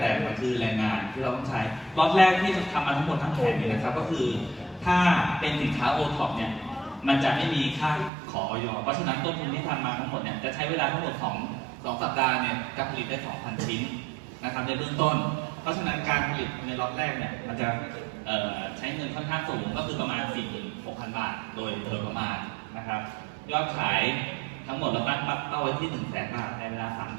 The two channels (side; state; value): left; drops out; at 8.1 s